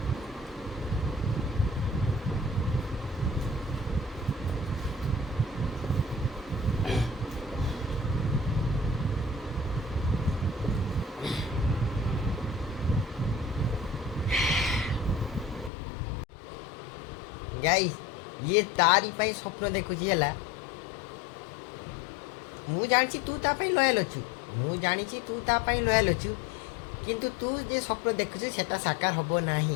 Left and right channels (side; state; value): right; drops out; at 15.7 s